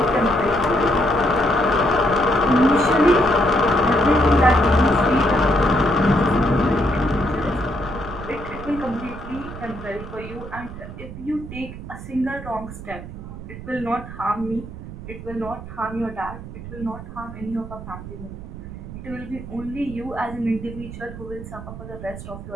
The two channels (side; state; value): right; noise; rumble, 12 dB below the sound